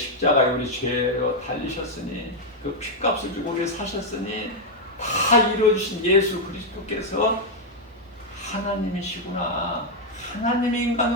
우리 죄로 달리셨으니 그 핏값을 주고 우리 사셨으니 다 이루어주신 예수 그리스도께서 하나님이시구나. 하나님이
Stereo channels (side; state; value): both; normal; correlation -0.01